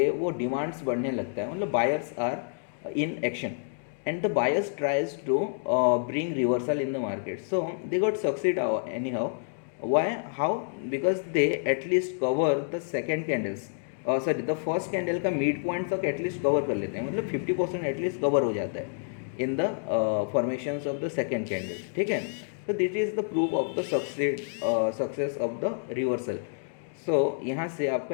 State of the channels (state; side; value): silent; right; digital silence